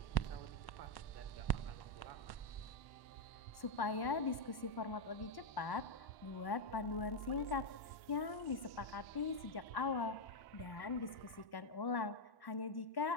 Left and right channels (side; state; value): right; late; 1.1 ms